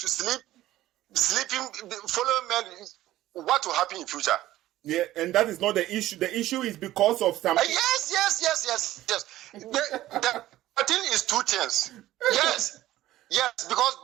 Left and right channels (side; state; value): left; quieter; 15.0 dB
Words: sleep, sleeping, following men, what will happen in future? Yeah, and that is not the issue. The issue is because of some. Yes. The thing is two things. Yes, because